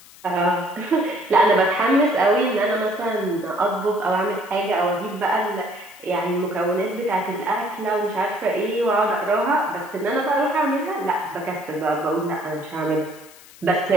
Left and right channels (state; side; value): noise; left; hiss, 22 dB below the sound